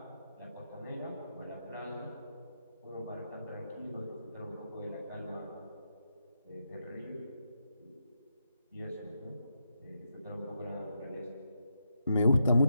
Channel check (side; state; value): both; inverted; correlation -0.83